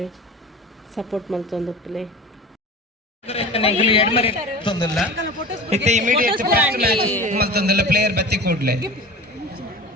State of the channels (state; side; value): normal; both; correlation 0.35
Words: ಸಪೋರ್ಟ್ ಮಲ್ತೊಂದುಪ್ಪಲೆ ಇತ್ತೆ ಇಮಿಡಿಯೇಟ್ ಫಸ್ಟ್ ಮ್ಯಾಚ್ ಮಲ್ತೊಂದುಲ್ಲ ಪ್ಲೇಯರ್ ಬತ್ತಿ ಕೂಡ್ಲೆ